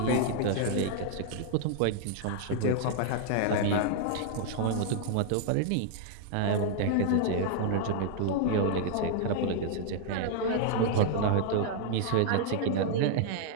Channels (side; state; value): both; different; correlation -0.01